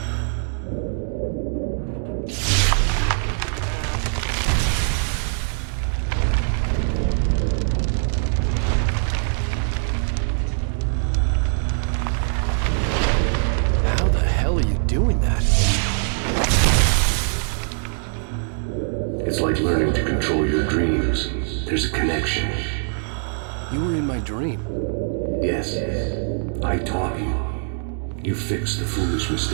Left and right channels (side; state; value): left; silent; 64 dB below the other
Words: How the hell are you doing that? It's like learning to control your dreams. There's a connection. You were in my dream. Yes, I taught you. You fixed the foolish